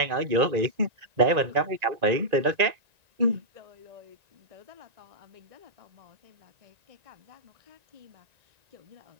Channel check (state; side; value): late; left; 1.9 ms